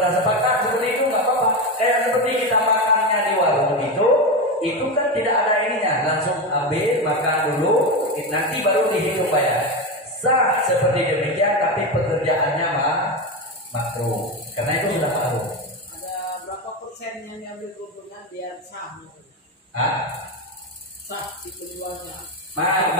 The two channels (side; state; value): both; normal; correlation 0.16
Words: sepakat seperti itu nggak apa-apa. Kayak seperti kita makannya di warung itu kan tidak ada ininya, langsung ambil makan dulu, nanti baru dihitung bayar. Sah seperti demikian, tapi pekerjaannya makruh, karena itu sudah makruh. Ada berapa persen yang diambil keuntungan biar sah? Sah di penjualnya.